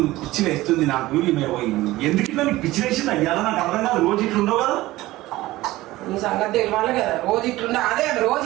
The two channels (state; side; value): quieter; left; 17.7 dB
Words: పిచ్చి వేస్తుంది. నాకు ఎందుకు ఇట్లా నీకు పిచ్చి వేసింది అయ్యాలా నాకు అర్థం కాదు. రోజు ఇట్లా ఉండవు కదా. నీ సంగతి తెలియాలి కదా. రోజు ఇట్లుండా అదే రోజు